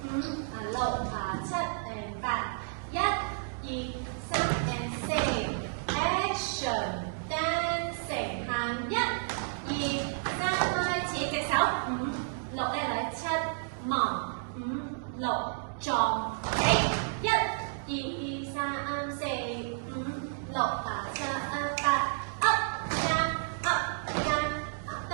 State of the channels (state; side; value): silent; left; digital silence